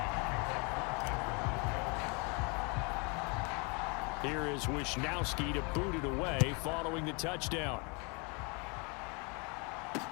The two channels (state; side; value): quieter; right; 31.8 dB